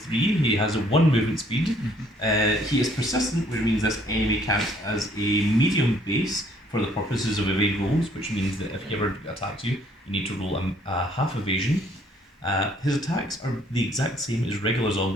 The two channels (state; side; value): normal; both; correlation 0.63